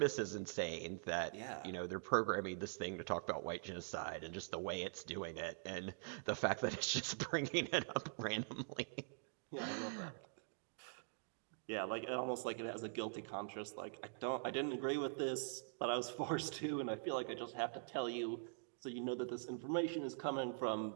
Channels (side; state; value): left; silent; digital silence